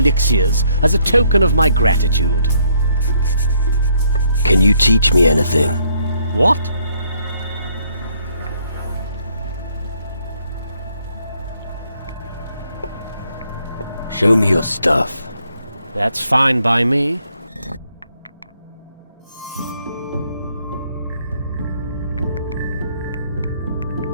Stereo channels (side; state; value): both; inverted; correlation -0.69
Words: as a token of my gratitude. Can you teach me anything? What? Show me your stuff. That's fine by me.